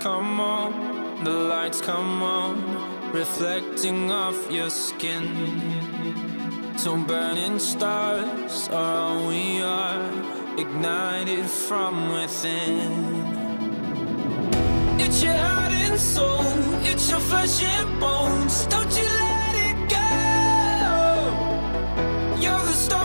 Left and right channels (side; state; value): both; inverted; correlation -1.00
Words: on, the lights come on, reflecting off your skin. So burning stars are all we are, ignited from within. It's your heart and soul, it's your flesh and bones. Don't you let it go. You're the